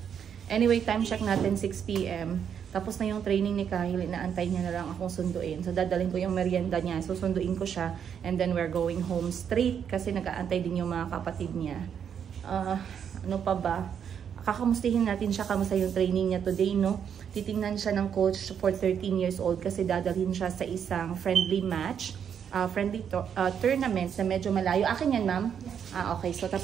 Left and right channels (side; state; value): left; quieter; 8.0 dB